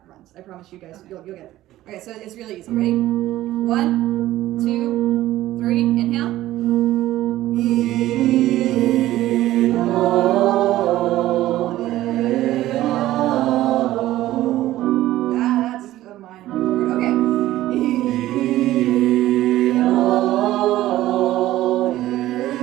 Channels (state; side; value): quieter; left; 15.1 dB